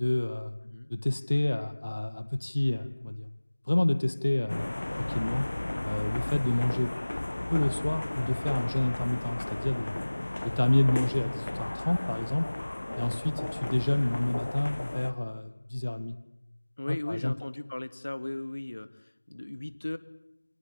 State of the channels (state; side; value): inverted; both; correlation -1.00